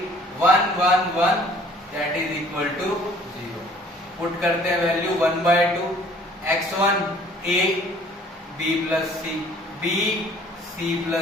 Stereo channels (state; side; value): normal; both; correlation 0.55